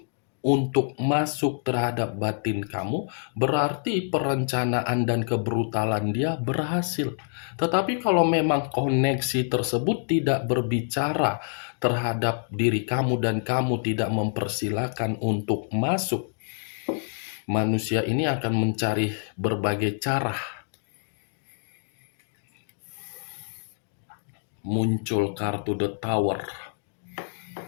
untuk masuk terhadap batin kamu, berarti perencanaan dan kebrutalan dia berhasil. Tetapi kalau memang koneksi tersebut tidak berbicara terhadap diri kamu dan kamu tidak mempersilahkan untuk masuk, manusia ini akan mencari berbagai cara. Muncul kartu The Tower.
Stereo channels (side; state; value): right; silent; digital silence